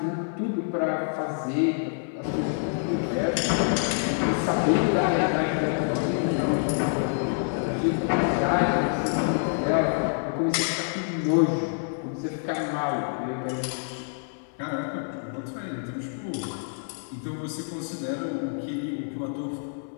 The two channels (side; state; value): right; silent; 57 dB below the other